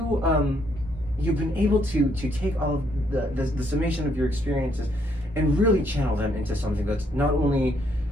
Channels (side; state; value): both; normal; correlation 0.71